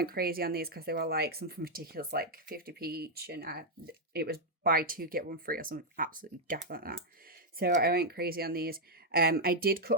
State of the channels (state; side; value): normal; both; correlation -0.02